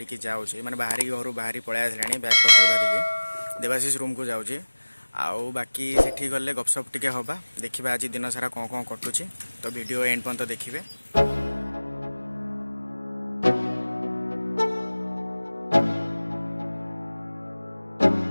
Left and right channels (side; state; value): both; inverted; correlation -1.00